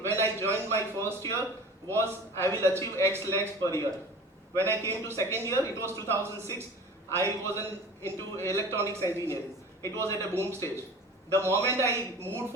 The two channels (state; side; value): normal; both; correlation 0.40